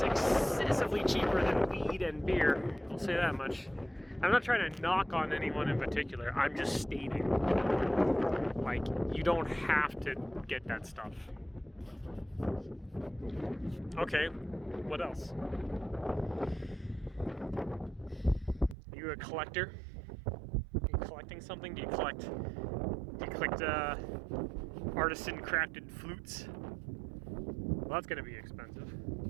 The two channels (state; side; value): drops out; left; at 18.8 s